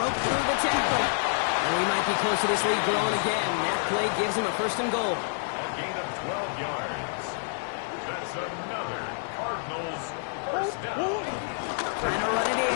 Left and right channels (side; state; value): right; silent; digital silence